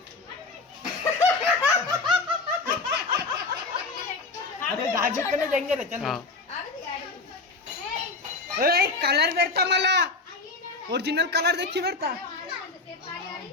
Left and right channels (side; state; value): right; quieter; 3.9 dB